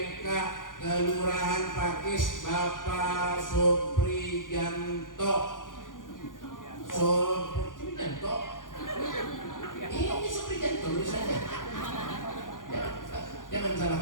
Kelurahan Pakis Bapak Suprijanto. Ini Suprijanto tulisannya. Jangan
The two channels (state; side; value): late; right; 0.89 ms